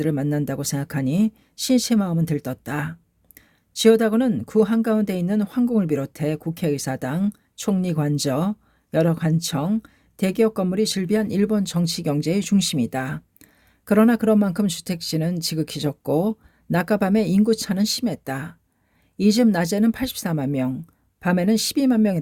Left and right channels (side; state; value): both; identical; correlation 1.00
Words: 만난다고 생각하니 신씨의 마음은 들떴다. 지오다구는 구 한가운데 있는 황궁을 비롯해 국회의사당, 총리관저, 여러 관청, 대기업 건물이 즐비한 일본 정치 경제의 중심이다. 그러나 그런 만큼 주택지는 지극히 적고 낮과 밤의 인구차는 심했다. 이 집 낮에는 84만 명, 밤에는 12만